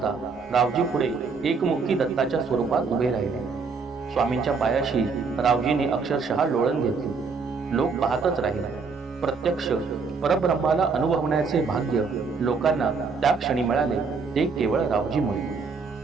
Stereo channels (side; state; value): left; quieter; 4.9 dB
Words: रावजी पुढे एकमुखी दत्ताच्या स्वरूपात उभे राहिले। स्वामींच्या पायाशी रावजीने अक्षरशः लोळण घेतली। लोक पाहतच राहिले। प्रत्यक्ष परब्रह्माला अनुभवण्याचे भाग्य लोकांना त्या क्षणी मिळाले, ते केवळ रावजीमुळे।